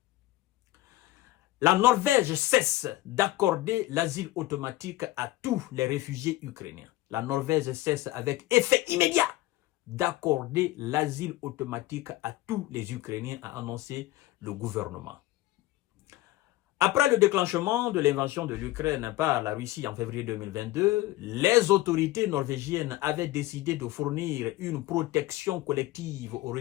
La Norvège cesse d'accorder l'asile automatique à tous les réfugiés ukrainiens. La Norvège cesse avec effet immédiat d'accorder l'asile automatique à tous les Ukrainiens, a annoncé le gouvernement. Après le déclenchement de l'invasion de l'Ukraine par la Russie en février 2022, les autorités norvégiennes avaient décidé de fournir une protection collective aux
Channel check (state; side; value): quieter; right; 17.1 dB